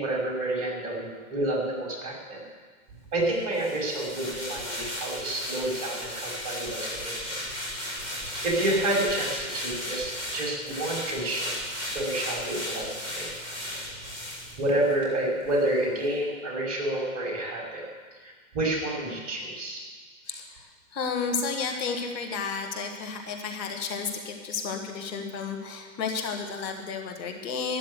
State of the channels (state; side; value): late; left; 2.1 ms